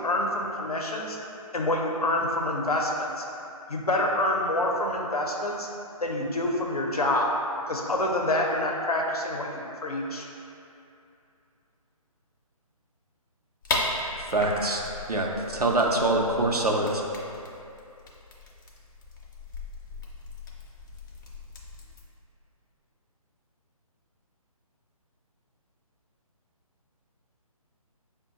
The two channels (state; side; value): normal; both; correlation 0.09